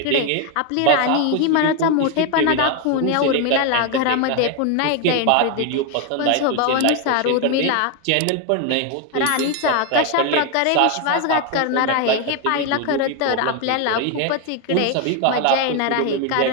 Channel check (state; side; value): different; both; correlation 0.01